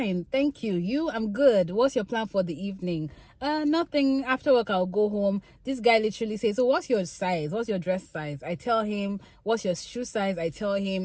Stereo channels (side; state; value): both; identical; correlation 1.00